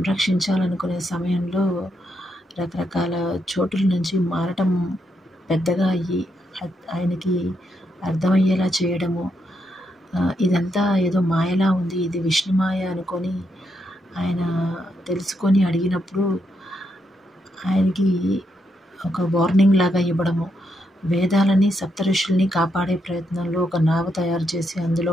సమయంలో రకరకాల చోటుల నుంచి మారటం పెద్దగా అయ్యి ఆయనకి అర్థమయ్యేలా చేయడము, ఇదంతా ఏదో మాయలా ఉంది, ఇది విష్ణుమాయ అనుకొని ఆయన తెలుసుకొని అడిగినప్పుడు ఆయనకి ఒక వార్నింగ్ లాగా ఇవ్వడము, వేదాలని సప్తఋషుల్ని కాపాడే ప్రయత్నంలో ఒక నావ తయారు చేసి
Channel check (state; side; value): normal; both; correlation 0.80